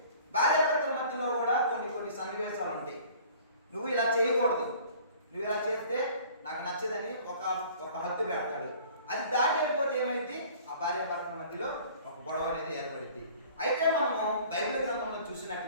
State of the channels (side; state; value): both; inverted; correlation -0.49